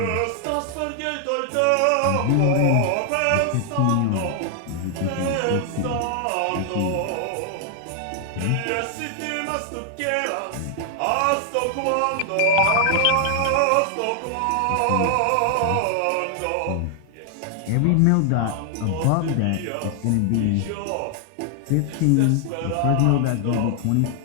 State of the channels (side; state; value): both; different; correlation 0.00